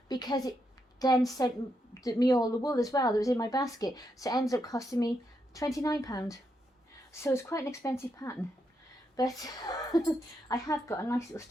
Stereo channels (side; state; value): both; normal; correlation 0.81